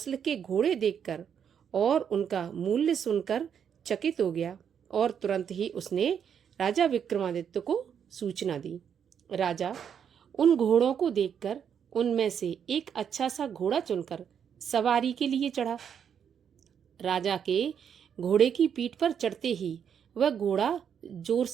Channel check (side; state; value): left; quieter; 8.0 dB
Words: के घोड़े देखकर और उनका मूल्य सुनकर चकित हो गया और तुरंत ही उसने राजा विक्रमादित्य को सूचना दी। राजा उन घोड़ों को देखकर उनमें से एक अच्छा सा घोड़ा चुनकर सवारी के लिए चढ़ा। राजा के घोड़े की पीठ पर चढ़ते ही वह घोड़ा जोर